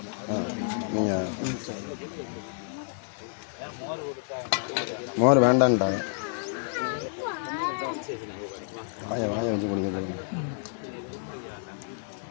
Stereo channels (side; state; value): right; silent; 58 dB below the other